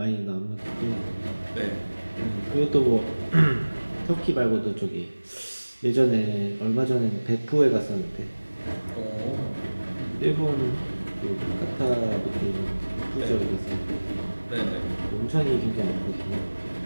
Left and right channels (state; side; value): inverted; both; correlation -1.00